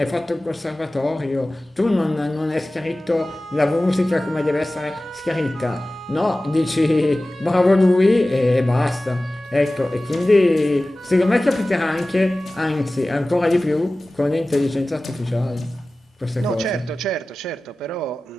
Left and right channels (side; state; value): both; normal; correlation 0.97